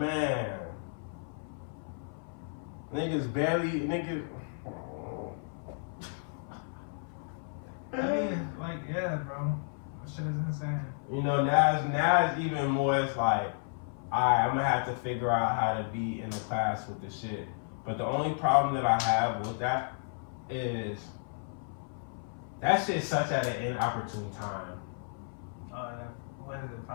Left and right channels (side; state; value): right; silent; 55 dB below the other